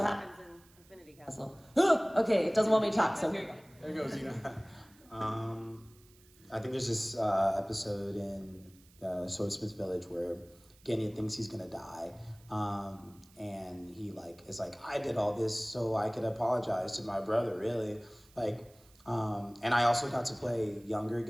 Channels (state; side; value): noise; right; hiss, 28 dB below the sound